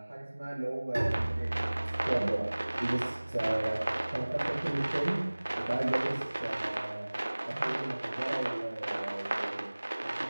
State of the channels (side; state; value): both; inverted; correlation -1.00